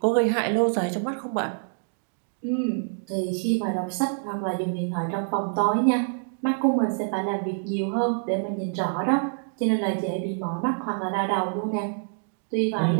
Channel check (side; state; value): left; silent; digital silence